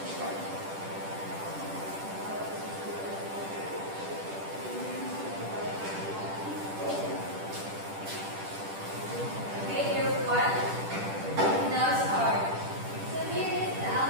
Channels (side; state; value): left; late; 10 ms